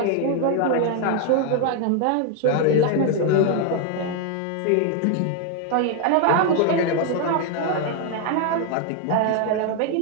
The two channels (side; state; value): both; different; correlation 0.00